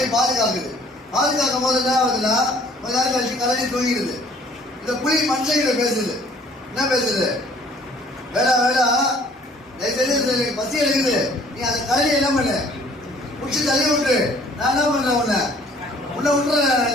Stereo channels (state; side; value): normal; both; correlation 0.56